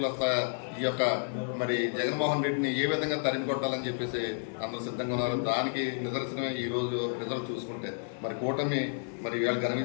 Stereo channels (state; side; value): silent; right; digital silence